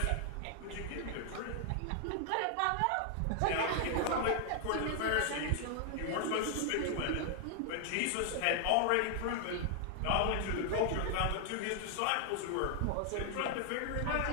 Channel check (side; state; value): both; different; correlation 0.00